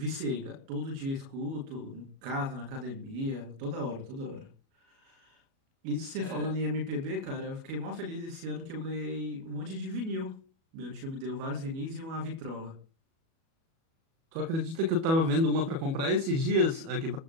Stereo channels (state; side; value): late; left; 37 ms